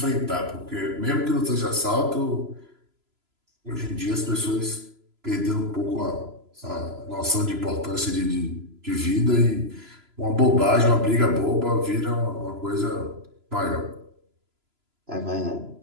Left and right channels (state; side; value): late; left; 3.0 ms